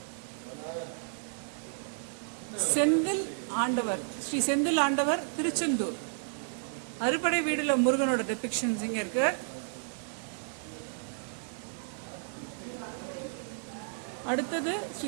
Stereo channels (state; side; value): silent; left; digital silence